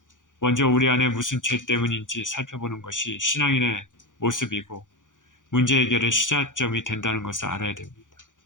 먼저 우리 안에 무슨 죄 때문인지 살펴보는 것이 신앙인의 모습이고 문제 해결의 시작점이 된다는 것을 알아야 됩니다.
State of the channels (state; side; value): late; right; 0.87 ms